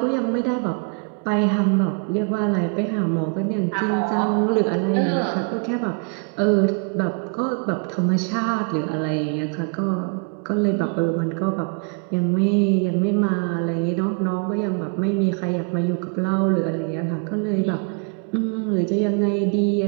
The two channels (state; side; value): quieter; left; 38.9 dB